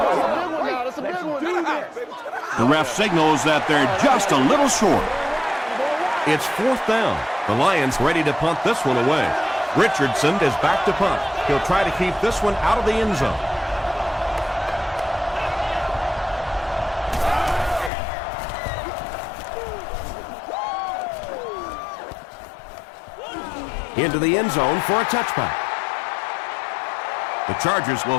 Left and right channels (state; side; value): drops out; right; at 17.9 s